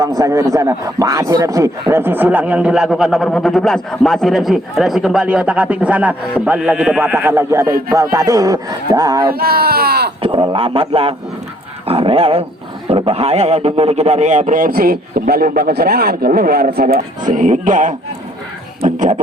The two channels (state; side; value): normal; both; correlation 0.63